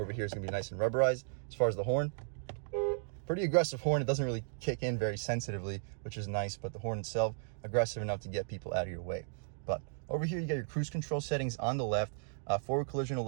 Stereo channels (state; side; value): silent; left; digital silence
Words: here is going to be nice and rubberized. As far as the horn, pretty aggressive horn. It doesn't really kick in very sensitively, which is nice, but the horn itself, aggressive enough to get people out of your way. But over here, you got your cruise control settings on the left, forward collision